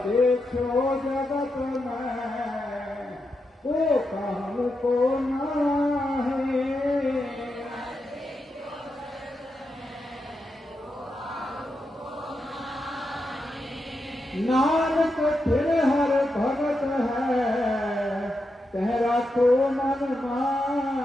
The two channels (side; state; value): both; normal; correlation 0.86